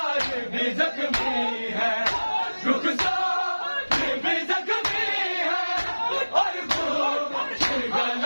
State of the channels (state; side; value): inverted; both; correlation -1.00